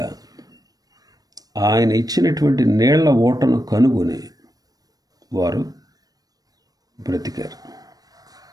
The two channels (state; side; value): late; left; 0.18 ms